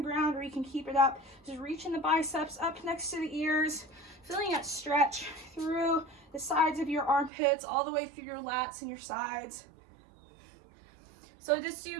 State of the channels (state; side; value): drops out; left; at 7.3 s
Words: or you can keep it up. Just reaching the biceps up next to the ears, feeling that stretch through the sides of your armpits, all the way through your lats and your sides. So just do